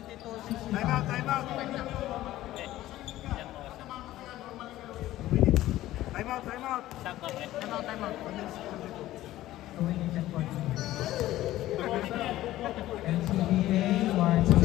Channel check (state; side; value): quieter; right; 15.1 dB